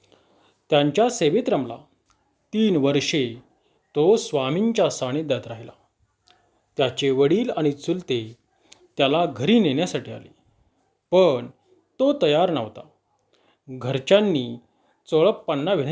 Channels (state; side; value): identical; both; correlation 1.00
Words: त्यांच्या सेवेत रमला. 3 वर्षे तो स्वामींच्या सानिध्यात राहिला. त्याचे वडील आणि चुलते त्याला घरी नेण्यासाठी आले, पण तो तयार नव्हता. घरच्यांनी चोळप्पांना